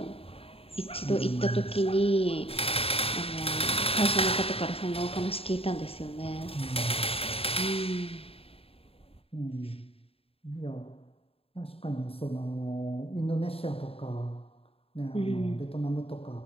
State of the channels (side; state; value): right; late; 0.28 ms